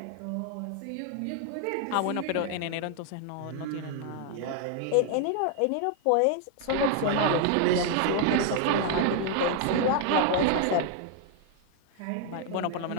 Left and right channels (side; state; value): both; different; correlation 0.00